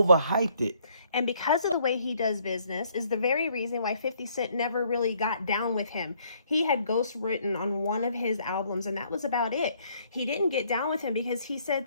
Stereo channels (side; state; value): both; inverted; correlation -0.65